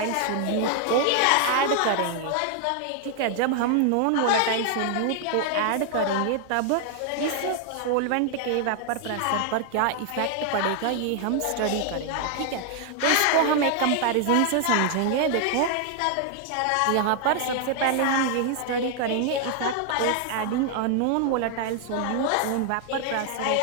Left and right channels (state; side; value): different; both; correlation 0.00